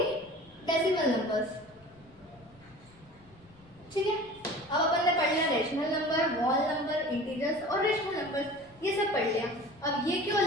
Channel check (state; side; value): noise; left; rumble, 27 dB below the sound